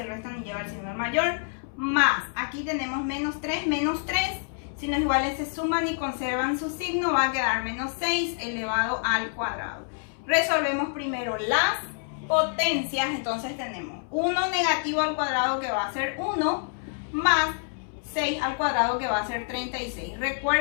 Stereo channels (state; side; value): silent; right; 60 dB below the other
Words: restan y lleva el signo del mayor, más, aquí tenemos menos 3, signos iguales se suman y conservan su signo, va a quedar menos 6 elevado al cuadrado. Resolvemos primero las potencias. Entonces tenemos 1 negativo al cuadrado, que va a ser 1, más 6 al cuadrado, que va a ser 36.